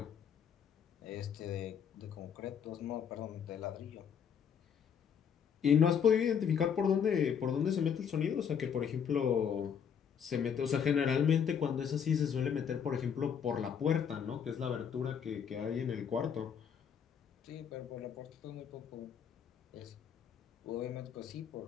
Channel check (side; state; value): right; quieter; 7.7 dB